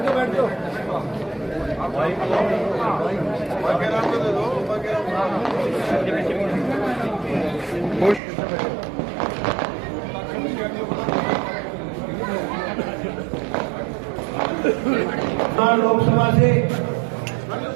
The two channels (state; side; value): drops out; left; at 8.2 s